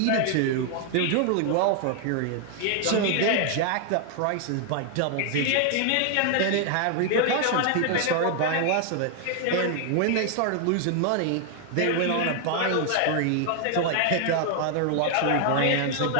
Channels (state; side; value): different; both; correlation 0.00